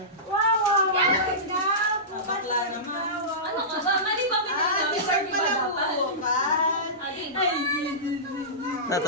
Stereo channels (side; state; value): both; normal; correlation -0.19